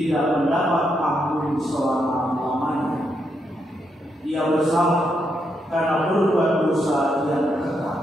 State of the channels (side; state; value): both; normal; correlation 0.80